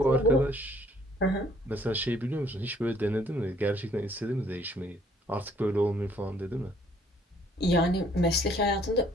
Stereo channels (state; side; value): normal; both; correlation 0.62